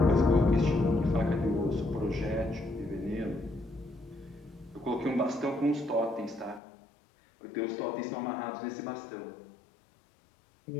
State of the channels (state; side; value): drops out; right; at 6.6 s